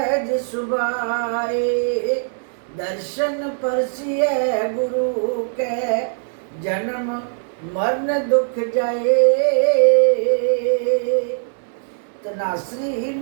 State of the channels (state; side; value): silent; left; 65 dB below the other